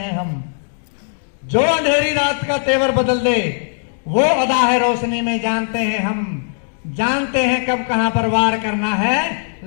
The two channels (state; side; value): silent; right; digital silence